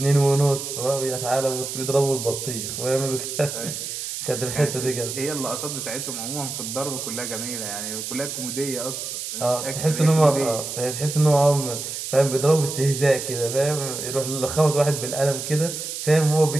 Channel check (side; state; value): right; noise; hiss, 6 dB below the sound